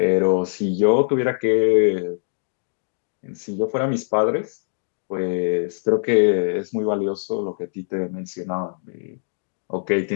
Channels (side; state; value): right; silent; digital silence